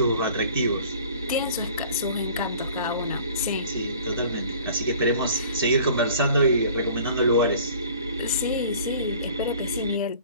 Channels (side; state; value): both; inverted; correlation -0.49